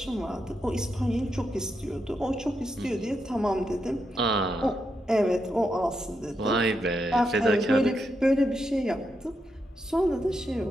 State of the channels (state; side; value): normal; both; correlation 0.83